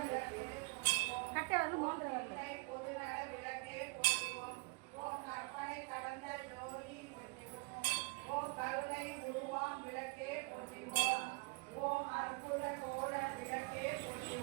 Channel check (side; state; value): left; quieter; 28.9 dB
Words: பொது நட விளக்கே போற்றிவோம். ஓம் கற்பனை கடந்த ஜோதி போற்றிவோம். ஓம் கருணை உருவாம் விளக்கே போற்றிவோம். ஓம் அற்புத கோட விளக்கே